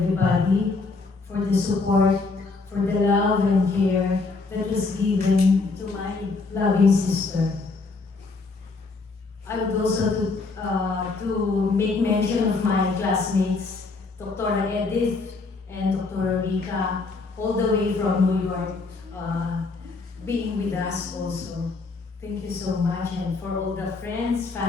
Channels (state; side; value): quieter; right; 3.9 dB